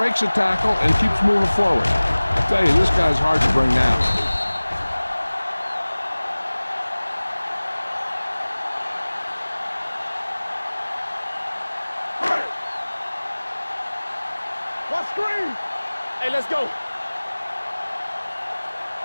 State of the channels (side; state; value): both; inverted; correlation -1.00